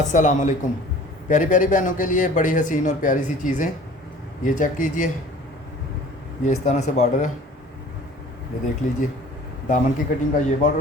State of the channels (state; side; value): normal; both; correlation 0.47